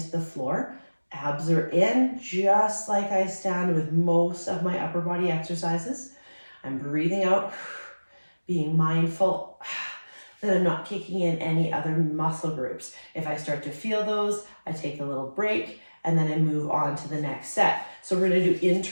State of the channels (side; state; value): both; inverted; correlation -1.00